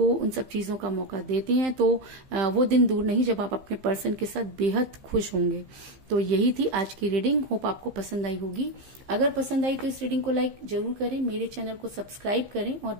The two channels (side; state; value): left; late; 15 ms